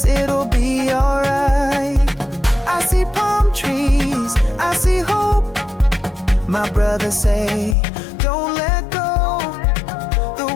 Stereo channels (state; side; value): drops out; right; at 7.8 s